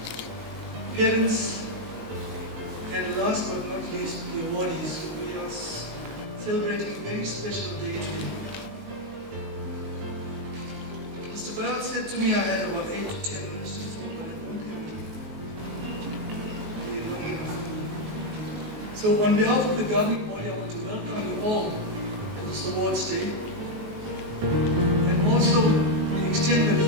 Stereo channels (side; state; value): left; late; 19 ms